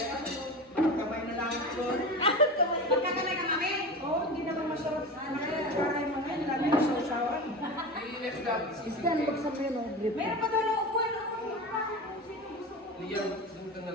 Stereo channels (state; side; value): normal; both; correlation 0.27